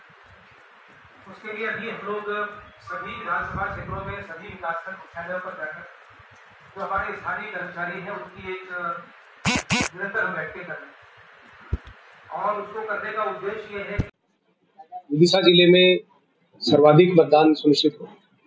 उसके लिए अभी हम लोग सभी विधानसभा क्षेत्रों में सभी विकासखंड मुख्यालयों पर जाकर जो हमारे स्थानीय कर्मचारी हैं उनकी एक निरंतर हम बैठकें कर रहे हैं और उसको करने का उद्देश्य ये है कि विदिशा जिले में सर्वाधिक मतदान सुनिश्चित हो,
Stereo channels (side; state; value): both; identical; correlation 1.00